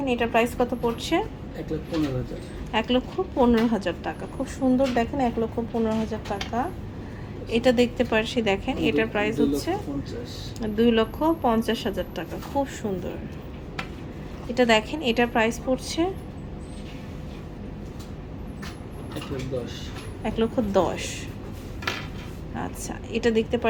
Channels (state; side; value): identical; both; correlation 1.00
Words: এটার প্রাইস কত পড়ছে? 1,15,000 টাকা। খুব সুন্দর, দেখেন 1,15,000 টাকা। এটা দেখতে পাচ্ছি, দেখেন এটার প্রাইস হচ্ছে 2,50,000 টাকা। খুব সুন্দর। এটা দেখেন, এটার প্রাইস পড়ছে 1,10,000। আচ্ছা, এটা দেখতে